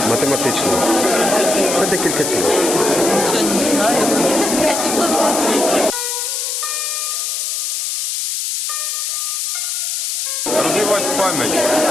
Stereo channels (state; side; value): noise; left; hiss, 2 dB below the sound